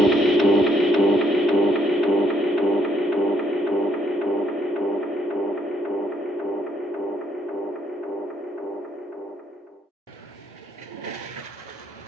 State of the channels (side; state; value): both; normal; correlation 0.70